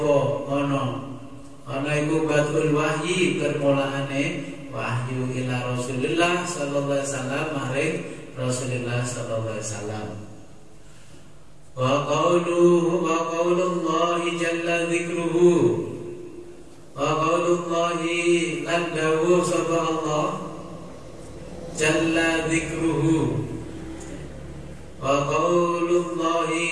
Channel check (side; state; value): both; identical; correlation 1.00